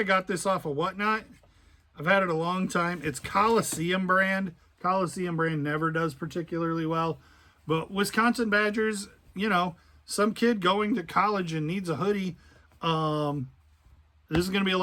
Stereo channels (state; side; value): identical; both; correlation 1.00